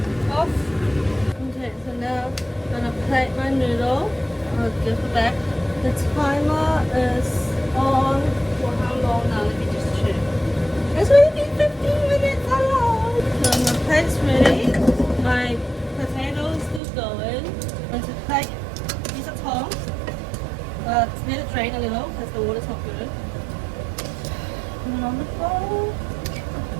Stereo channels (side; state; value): left; drops out; at 16.8 s